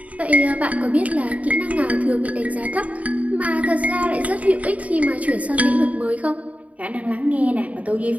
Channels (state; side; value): late; left; 0.069 ms